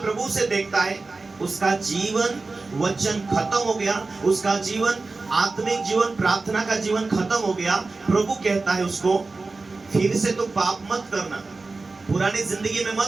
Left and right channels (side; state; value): left; quieter; 3.7 dB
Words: प्रभु से देखता है, उसका जीवन वचन खत्म हो गया, उसका जीवन आत्मिक जीवन, प्रार्थना का जीवन खत्म हो गया। प्रभु कहता है उसको, फिर से तो पाप मत करना, पुरानी जिंदगी में